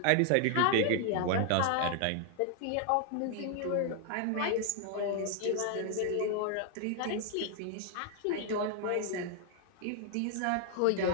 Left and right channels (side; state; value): both; different; correlation 0.00